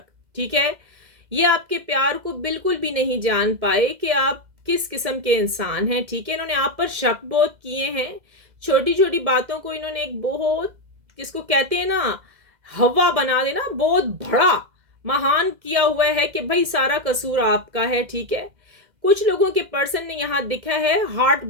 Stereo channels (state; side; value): late; left; 2.0 ms